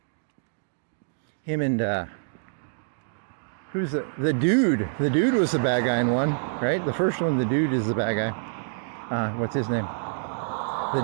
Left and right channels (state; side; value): silent; left; digital silence